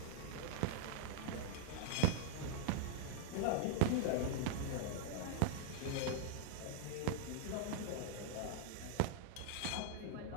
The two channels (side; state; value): both; different; correlation -0.01